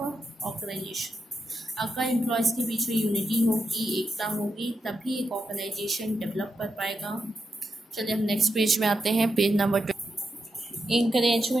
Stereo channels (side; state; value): both; normal; correlation 0.86